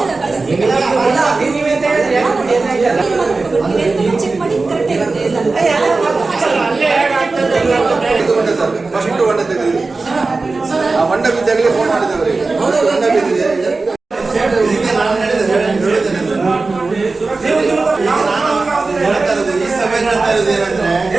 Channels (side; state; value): left; quieter; 3.7 dB